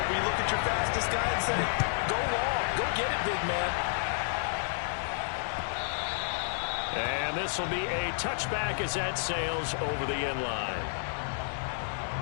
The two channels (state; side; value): silent; right; 57 dB below the other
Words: where you look at your fastest guy and say, go long, go get it, big man. And this will be a touchback as that sails over the end line.